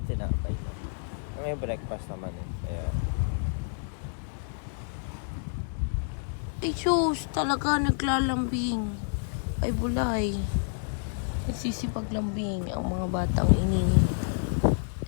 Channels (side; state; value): right; silent; digital silence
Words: sinapay. May breakfast naman eh. Kaya... Ay, sus, talaga naglalambing. Ay, bulay. Nagsisipaglambing ang mga batang ini.